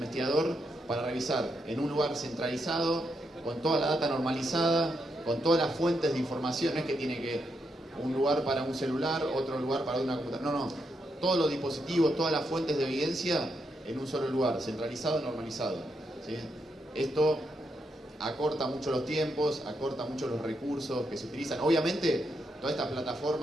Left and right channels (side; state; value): both; normal; correlation 0.81